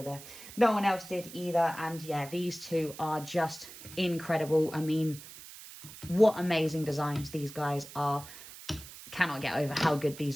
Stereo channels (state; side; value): noise; right; hiss, 15 dB below the sound